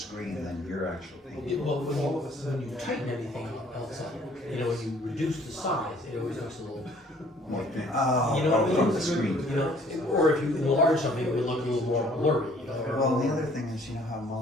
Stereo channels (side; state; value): both; normal; correlation 0.58